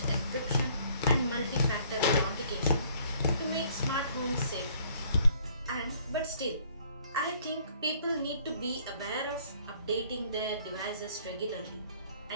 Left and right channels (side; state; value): both; inverted; correlation -0.60